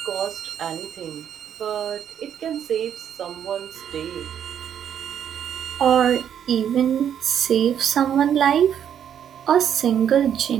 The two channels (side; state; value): left; quieter; 9.2 dB